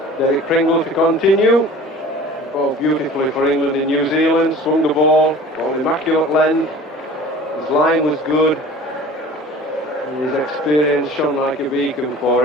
Derek Pringle to continue. Bowled beautifully for England in New Zealand. Swung the ball, ball immaculate length. His line was good. And his experience shone like a beacon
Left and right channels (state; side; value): normal; both; correlation 0.43